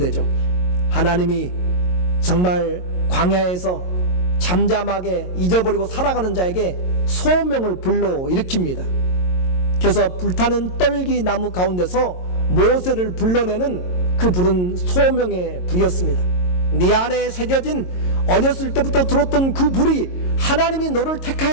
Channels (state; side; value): late; right; 22 ms